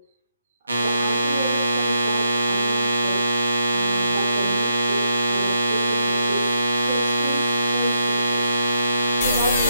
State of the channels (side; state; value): both; inverted; correlation -0.78